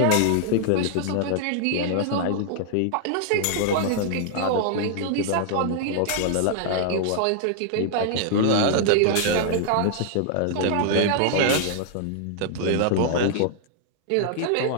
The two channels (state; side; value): different; both; correlation 0.00